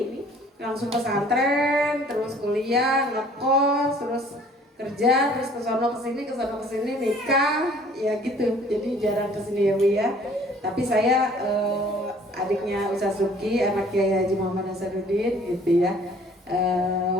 langsung pesantren, terus kuliah, ngekos, terus kerja, terus kesono kesini nikah, ya gitu. Jadi jarang kesini ya Bu ya. Tapi saya adiknya Ustaz Subki, anak Kiai Haji Muhammad Hasanuddin gitu ya.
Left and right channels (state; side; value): normal; both; correlation 0.54